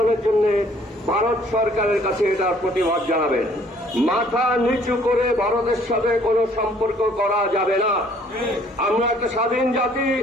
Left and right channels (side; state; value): both; normal; correlation 0.59